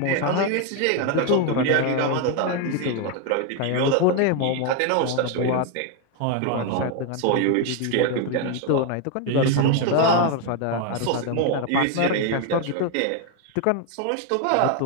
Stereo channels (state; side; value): different; both; correlation 0.01